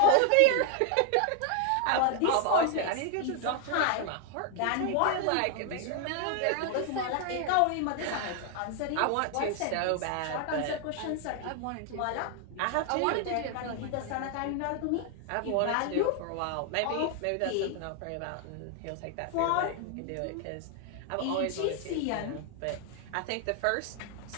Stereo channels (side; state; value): both; different; correlation 0.00